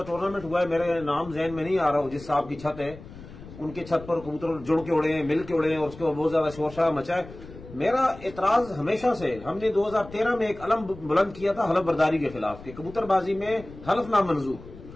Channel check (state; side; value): noise; left; rumble, 16 dB below the sound